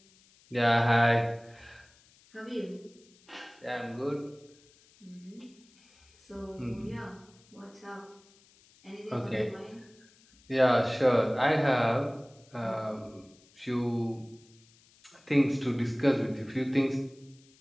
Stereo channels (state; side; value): noise; left; hiss, 29 dB below the sound